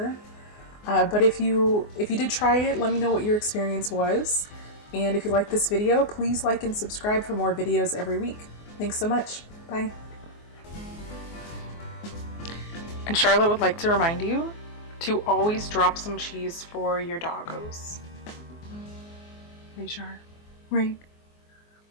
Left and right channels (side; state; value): right; late; 24 ms